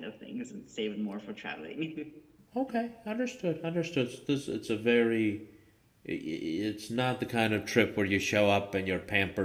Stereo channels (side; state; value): both; identical; correlation 1.00